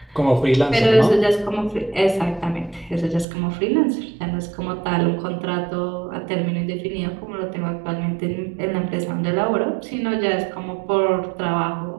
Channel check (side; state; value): left; drops out; at 3.2 s